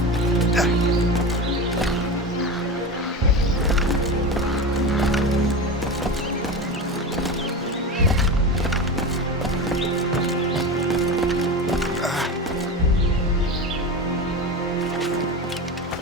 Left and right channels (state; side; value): normal; both; correlation 0.25